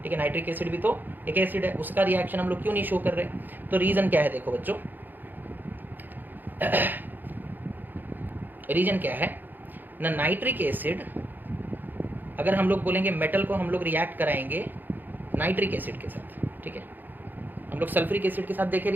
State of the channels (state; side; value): late; left; 0.089 ms